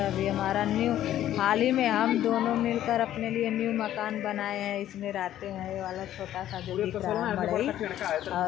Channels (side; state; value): right; quieter; 12.3 dB